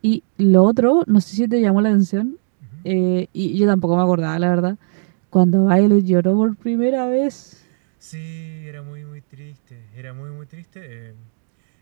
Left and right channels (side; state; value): left; silent; digital silence